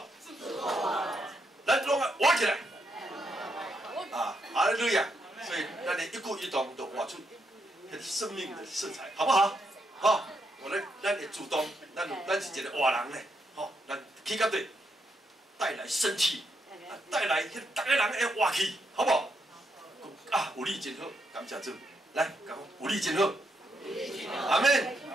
咱拢活起来。啊，哈利路亚。所以咱的一举一动都活出生命的色彩，好不好？好，咱会主动，咱是一个活人呢。吼，咱起到对，带来生气，带来迄逐个人会活气，好不好？啊，有你真好，感谢主。来，讲有你真好，阿门。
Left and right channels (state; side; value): normal; both; correlation 0.79